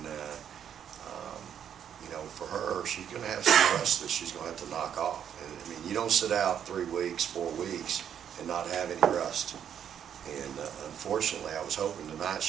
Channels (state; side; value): quieter; left; 8.9 dB